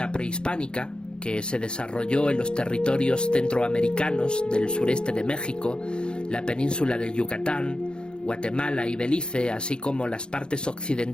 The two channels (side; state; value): right; late; 0.050 ms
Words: prehispánica, que se desarrolló en los territorios centroamericanos del sureste de México, la península del Yucatán, Guatemala y Belice, así como las partes